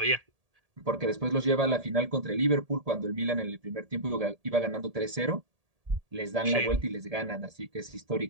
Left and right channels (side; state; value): left; late; 1.8 ms